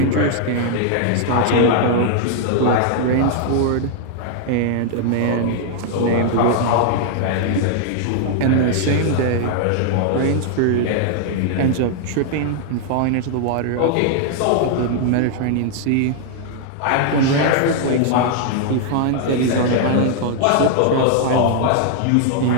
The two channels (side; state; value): both; different; correlation 0.00